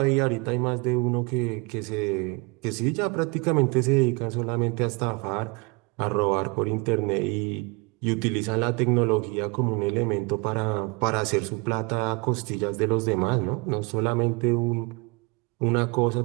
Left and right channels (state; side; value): quieter; left; 28.2 dB